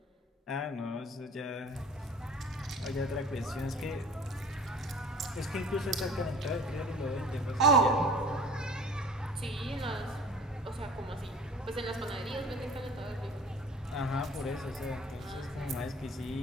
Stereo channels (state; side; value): normal; both; correlation 0.46